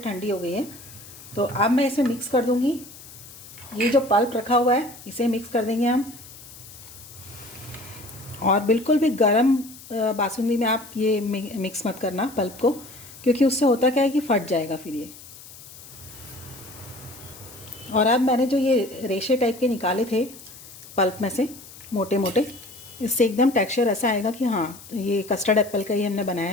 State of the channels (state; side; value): noise; left; hiss, 18 dB below the sound